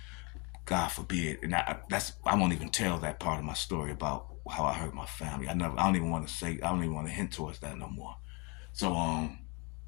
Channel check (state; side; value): quieter; right; 30.3 dB